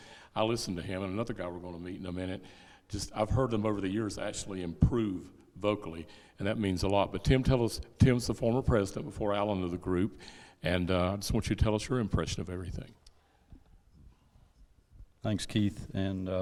I listened to him, and another guy we're going to meet in a minute. I've heard them over the years actually improve vocally, and that means a lot. But Tim's the former president before Alan of the group, and I just want you to tell us your impression of everything. Thanks, Keith. And,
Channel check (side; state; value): both; identical; correlation 1.00